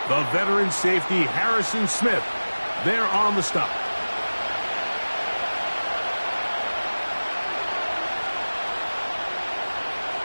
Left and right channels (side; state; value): both; inverted; correlation -1.00